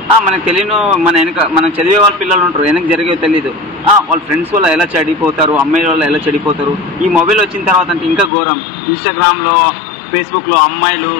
మనకు తెలియను, మనం చదివే వాళ్ళ పిల్లలు ఉంటారు, వెనక జరిగేవి తెలియదు. వాళ్ళ ఫ్రెండ్స్ వల్ల ఎలా చెడిపోతారు, అమ్మాయిల వల్ల ఎలా చెడిపోతారు. ఈ మొబైల్ వచ్చిన తర్వాత అంటే ఇంకా ఘోరం. ఇన్స్టాగ్రామ్లో, ఫేస్బుక్లో అమ్మాయిలు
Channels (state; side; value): drops out; right; at 8.3 s